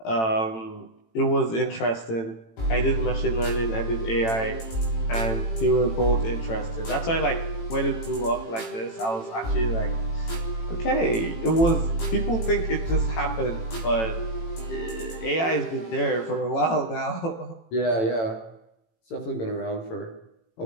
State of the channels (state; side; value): late; right; 18 ms